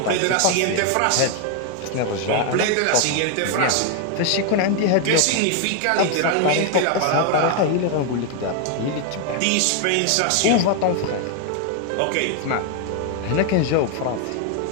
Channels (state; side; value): different; both; correlation 0.00